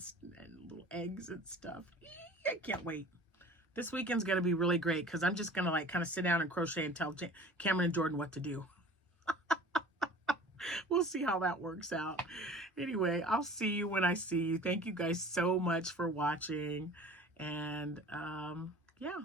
little eggs and stuff. I can't wait. This weekend's going to be really great because I'm just going to like kind of sit down and crochet and tell Cameron and Jordan what to do. We'll see how that works out. Anyway, I'll see you when I see you. Thank you guys so much for watching. And yeah,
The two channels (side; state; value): both; normal; correlation 0.43